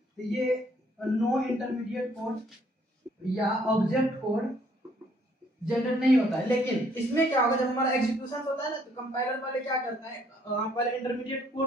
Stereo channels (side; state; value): both; normal; correlation 0.64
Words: तो ये नो इंटरमीडिएट कोड या ऑब्जेक्ट कोड जनरेट नहीं होता है। लेकिन इसमें क्या होगा, जब हमारा एग्जीक्यूशन होता है ना, तो कंपाइलर पहले क्या करता है, पहले इंटरमीडिएट